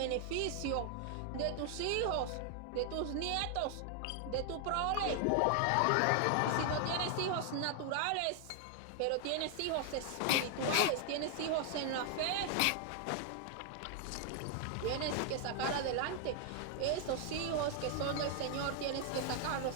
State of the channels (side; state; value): both; different; correlation 0.00